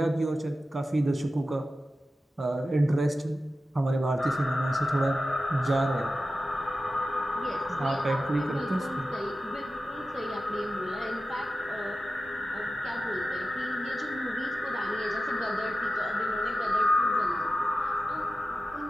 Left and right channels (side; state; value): both; normal; correlation 0.93